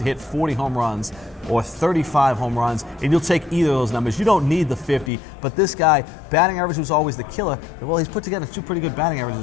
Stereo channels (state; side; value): drops out; right; at 5.1 s